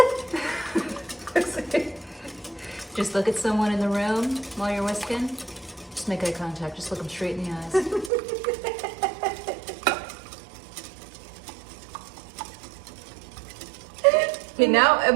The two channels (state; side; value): drops out; left; at 8.1 s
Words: Just look at someone in the room while you're whisking. Just make eye contact. Just look them straight in the eyes. Okay, now